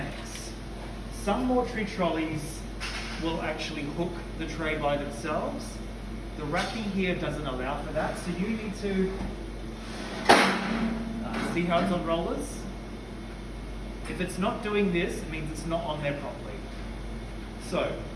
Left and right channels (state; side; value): identical; both; correlation 1.00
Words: Some mortuary trolleys will actually hook the tray by themselves. The racking here doesn't allow for that, so you need to see how it's on rollers. If it's not doing this, it means it's not on there properly. So,